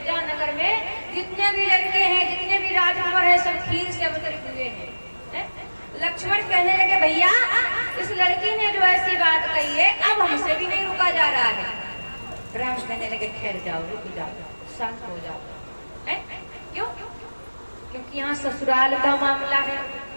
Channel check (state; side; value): inverted; both; correlation -1.00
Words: नगर में जितने भी लड़के हैं, जितने भी राजकुमार हैं, सब खीर से अवतरित हुए हैं। लक्ष्मण कहने लगे, भैया इस लड़की ने जो ऐसी बात कही है अब हमसे भी नहीं रुका जा रहा है। राम कहने लगे, ठहर जाओ, रुक जाओ, शांत हो जाओ। क्यों? क्योंकि यहाँ ससुराल का मामला है,